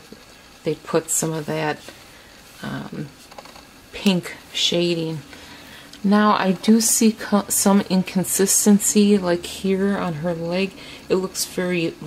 they put some of that pink shading. Now I do see some inconsistency, like here on her leg. It looks very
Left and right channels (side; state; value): both; identical; correlation 1.00